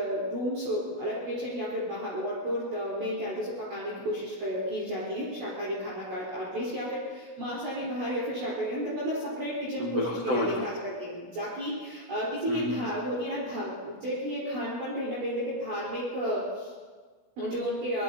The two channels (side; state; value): left; late; 16 ms